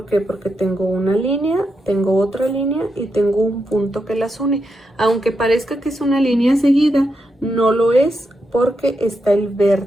qué? Porque tengo una línea, tengo otra línea y tengo un punto que las une. Aunque parezca que es una línea seguida, no lo es porque está el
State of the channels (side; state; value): both; normal; correlation 0.84